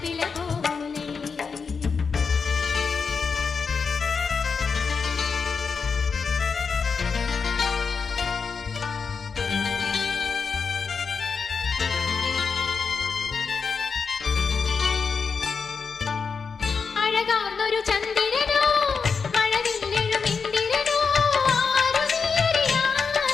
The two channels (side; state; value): right; quieter; 5.4 dB